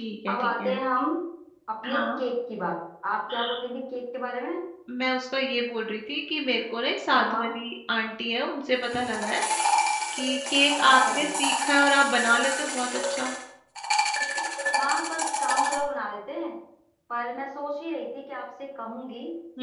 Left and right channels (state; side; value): identical; both; correlation 1.00